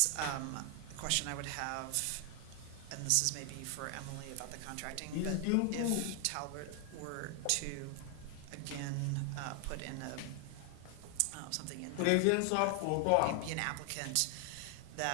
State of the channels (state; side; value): different; both; correlation 0.00